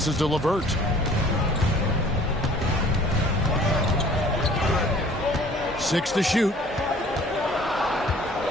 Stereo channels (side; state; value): both; normal; correlation 0.52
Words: to LeVert. Six to shoot.